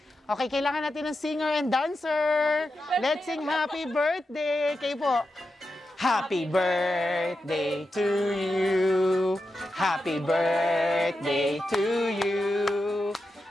Okay, kailangan natin ng singer and dancer. Let's sing happy birthday. Kayo po. Happy birthday to you. Happy birthday to you.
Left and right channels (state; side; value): normal; both; correlation 0.89